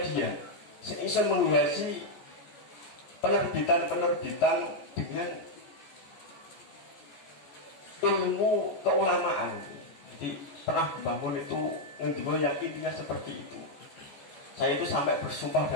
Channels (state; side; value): late; right; 14 ms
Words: sing iso menghiasi penerbitan-penerbitan dengan ilmu keulamaan. Jadi pernah bangun itu ngendiko yang intinya seperti itu. Saya itu sampai bersumpah